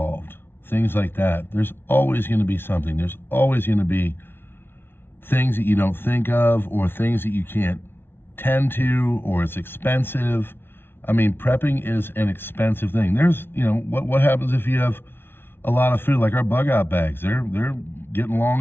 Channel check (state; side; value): late; right; 0.11 ms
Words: Things like that. There's always going to be something. There's always going to be things that you don't think of, or things that you can't tend to, or it's expensive. I mean, prepping is an expensive thing. There's, what happens if you have a lot of food, like our bug out bags? They're getting